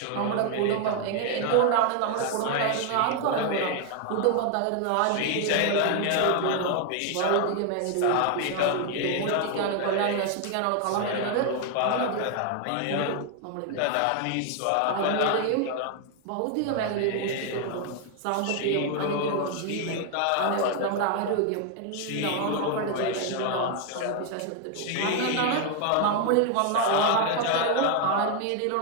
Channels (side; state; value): both; different; correlation 0.00